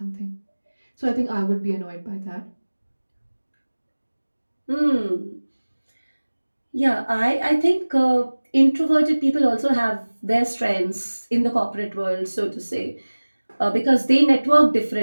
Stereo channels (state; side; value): inverted; both; correlation -1.00